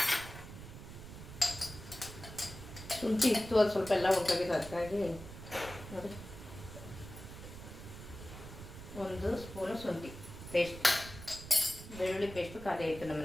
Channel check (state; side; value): noise; right; rumble, 13 dB below the sound